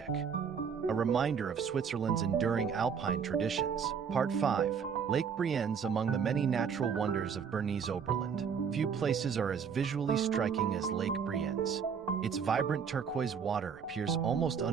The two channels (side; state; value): left; quieter; 6.7 dB